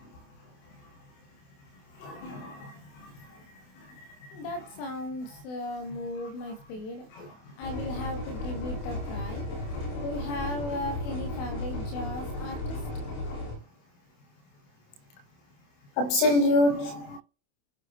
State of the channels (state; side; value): late; right; 28 ms